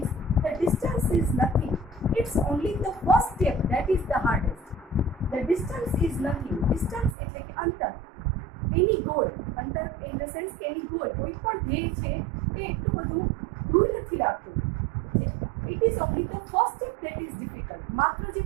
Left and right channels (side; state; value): left; drops out; at 7.2 s